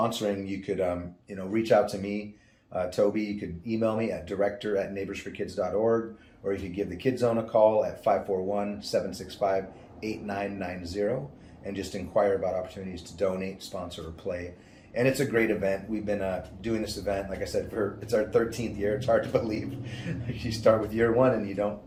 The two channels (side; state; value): both; identical; correlation 1.00